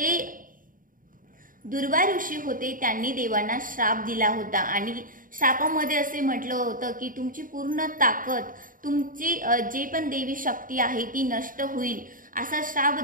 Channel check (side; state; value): left; late; 0.40 ms